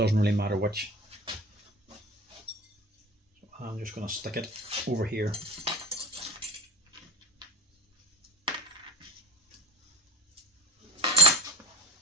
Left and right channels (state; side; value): normal; both; correlation 0.33